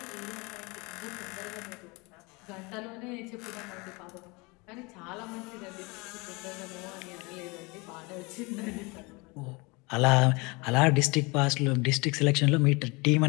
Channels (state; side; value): quieter; right; 26.8 dB